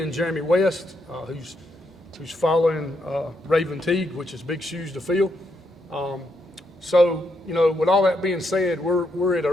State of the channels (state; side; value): normal; both; correlation 0.79